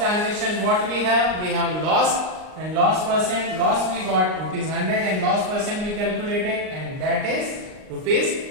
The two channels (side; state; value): left; late; 38 ms